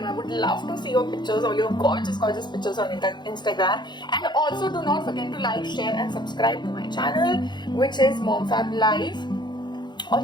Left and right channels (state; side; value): late; right; 0.21 ms